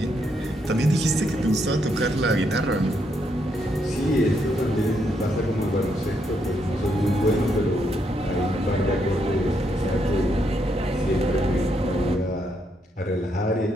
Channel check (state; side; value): normal; both; correlation 0.77